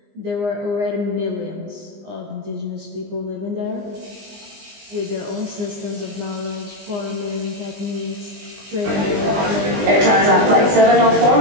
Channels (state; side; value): late; left; 20 ms